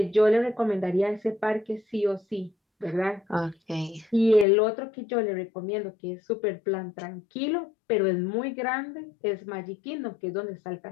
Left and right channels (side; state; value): right; drops out; at 4.5 s